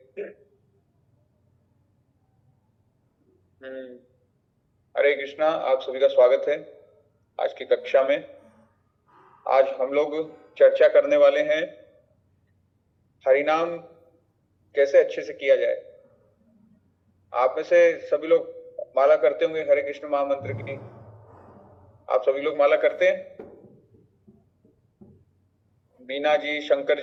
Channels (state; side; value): identical; both; correlation 1.00